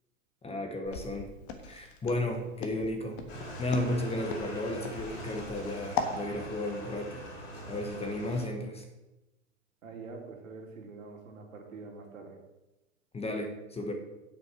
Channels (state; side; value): normal; both; correlation 0.45